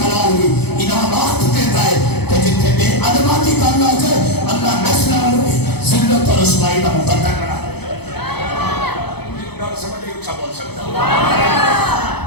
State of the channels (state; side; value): late; right; 0.98 ms